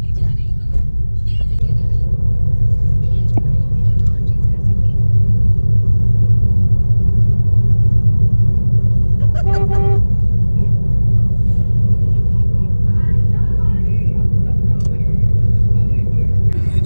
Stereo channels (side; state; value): both; inverted; correlation -1.00